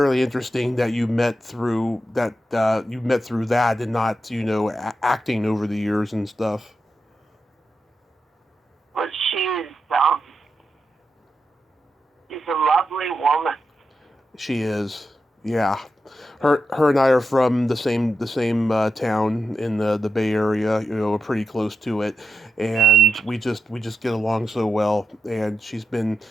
interesting that you met through that. You met through that, and not acting over the years and stuff. But she's a lovely woman. She is, yeah. Her and I are from the same town in the Bay Area. We're pretty close to it, and we just get along so well. And she's been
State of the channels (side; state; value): both; normal; correlation 0.88